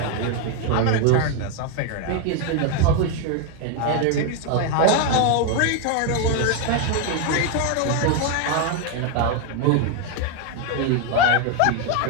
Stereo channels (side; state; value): both; different; correlation 0.01